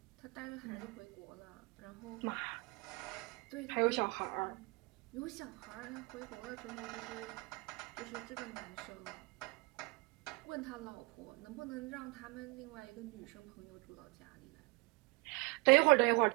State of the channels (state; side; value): quieter; left; 26.8 dB